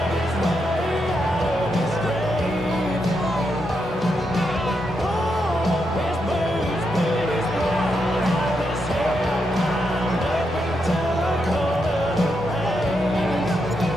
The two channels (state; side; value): normal; both; correlation 0.82